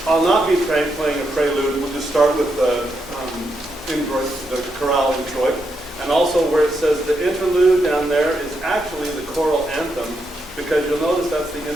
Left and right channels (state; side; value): noise; left; rumble, 23 dB below the sound